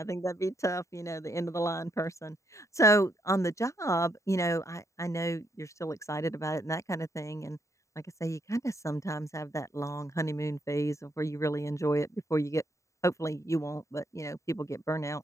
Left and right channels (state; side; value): late; right; 0.15 ms